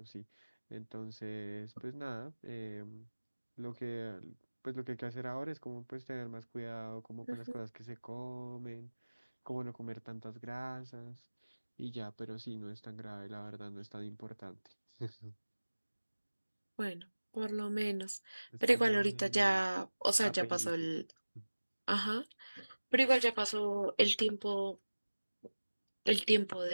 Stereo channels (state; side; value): inverted; both; correlation -1.00